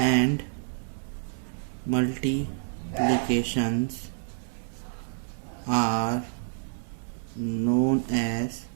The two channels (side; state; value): left; silent; digital silence